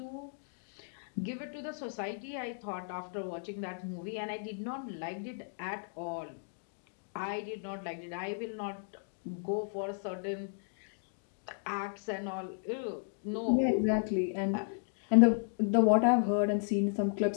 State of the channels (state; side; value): silent; right; digital silence